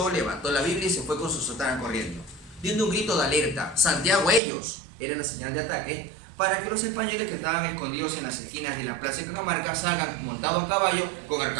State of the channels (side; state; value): left; drops out; at 4.4 s